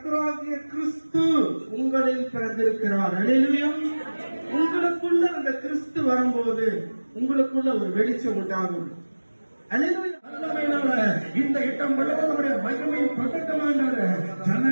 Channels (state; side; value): inverted; both; correlation -1.00